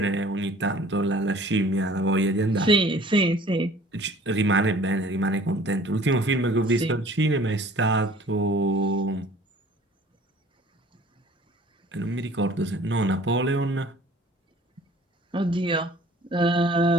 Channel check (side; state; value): both; normal; correlation 0.50